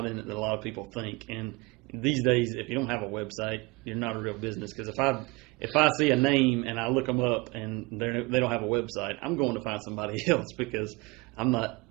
in it that a lot of people think. And these days, if you don't have a website, you're not a real business. Because if I see a name and I look them up and they don't have a website, I'm going to find somebody else because I'm not.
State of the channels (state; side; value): quieter; left; 25.2 dB